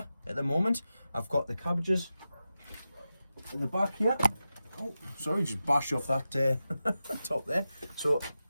at the moment. I've got the cabbages in the back here. Oh, sorry, just bashed off that top there. So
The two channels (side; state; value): both; inverted; correlation -0.92